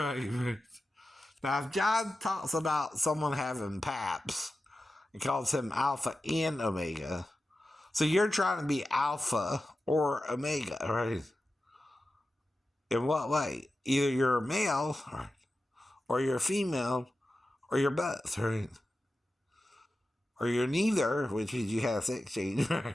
Now, if John talks about someone having PAPS, he calls him Alpha and Omega. So you're trying to be Alpha or Omega, right? In what way? Either you're a male, right? Or you're a female, or you're both, right? Or you're neither, which means you have sex change,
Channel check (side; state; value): both; normal; correlation 0.93